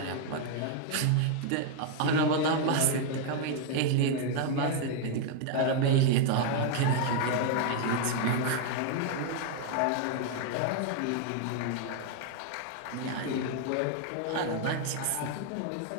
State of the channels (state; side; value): different; both; correlation 0.00